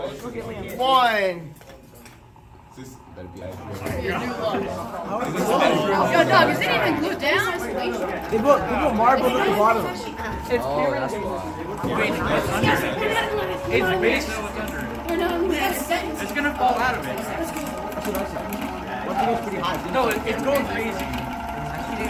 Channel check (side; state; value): both; identical; correlation 1.00